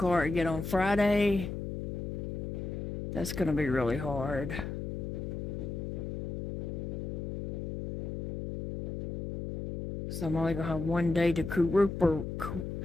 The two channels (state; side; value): noise; left; hum, 4 dB below the sound